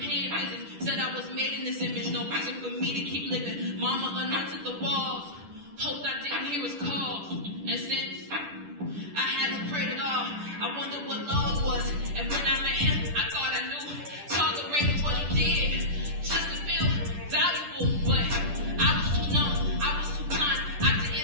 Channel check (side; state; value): left; late; 10 ms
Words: visits, said I was made in this image. No reason for me to keep living. Mama anointed the walls, hoped I didn't hear his calls. And since I haven't prayed at all, I wondered what love was. And when I met him, I thought I knew. Tolerated what he did, just to feel valuable. But I was too numb, I was too blind. I